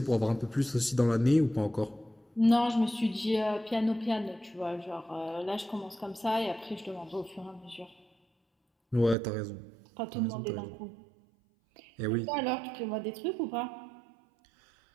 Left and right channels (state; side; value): drops out; left; at 9.2 s